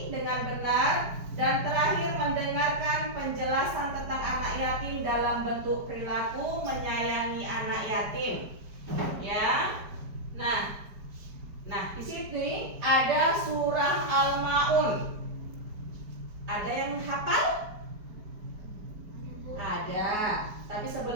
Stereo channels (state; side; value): late; left; 4.8 ms